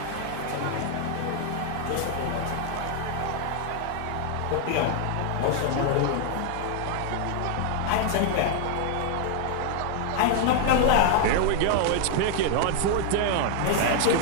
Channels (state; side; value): different; both; correlation 0.00